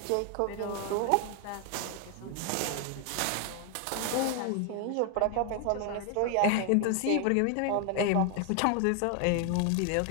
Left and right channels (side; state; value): both; different; correlation 0.00